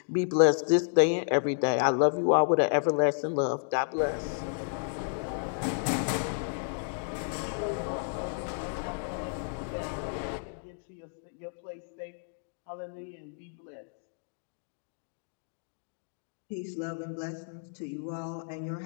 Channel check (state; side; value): silent; right; digital silence